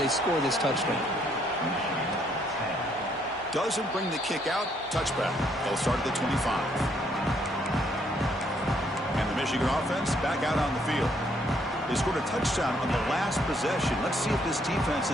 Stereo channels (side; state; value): both; normal; correlation 0.69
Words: score this touchdown. Doesn't bring the kick out. Touchback. They'll start at the 25. And the Michigan offense back out on the field. They scored a touchdown on the last possession. Let's see if this defense